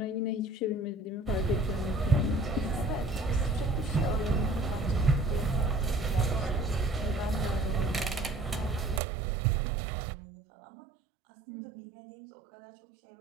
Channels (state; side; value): drops out; left; at 9.0 s